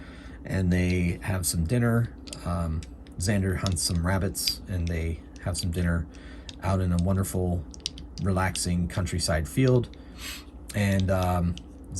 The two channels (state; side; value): identical; both; correlation 1.00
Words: and they have some dinner. Xander hunts some rabbits, and they have some dinner out in a wonderful, relaxing countryside field. And